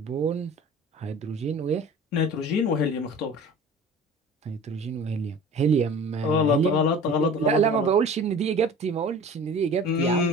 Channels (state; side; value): normal; both; correlation 0.41